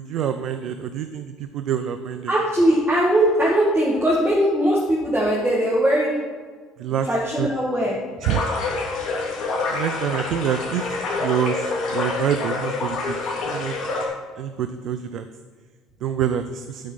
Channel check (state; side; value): normal; both; correlation 0.61